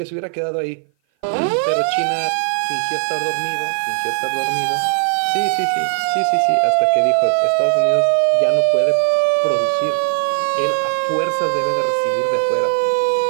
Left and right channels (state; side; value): silent; left; 57 dB below the other